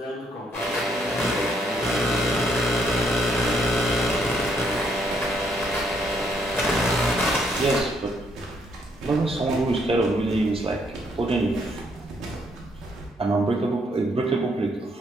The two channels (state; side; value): normal; both; correlation 0.71